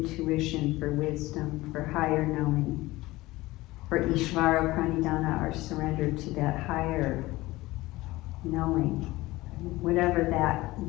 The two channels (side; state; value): right; quieter; 19.2 dB